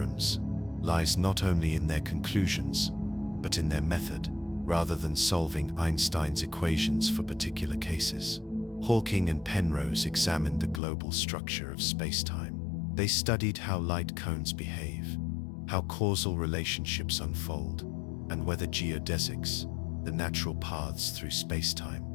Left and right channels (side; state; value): right; drops out; at 10.8 s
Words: lies not only in their conclusions, but in their method. Rather than solving Einstein's equations for particular cases, Hawking and Penrose examined the global structure of space-time. They studied how light cones behave, how causal relationships unfold, and whether geodesics, the natural paths through